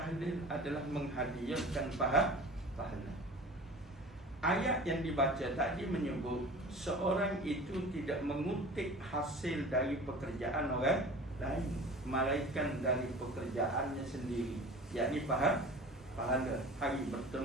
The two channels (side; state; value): both; normal; correlation 0.39